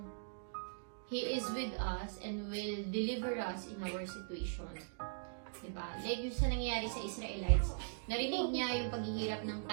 He is with us and will deliver us in our situation. Diba? Like yung sa nangyayari sa Israelites, narinig niya yung paghihirap ng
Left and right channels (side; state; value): left; silent; digital silence